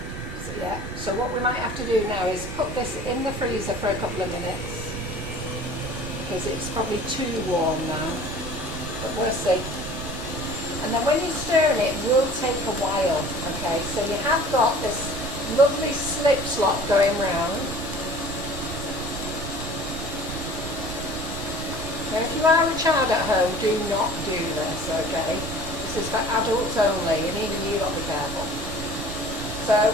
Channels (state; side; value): noise; right; rumble, 8 dB below the sound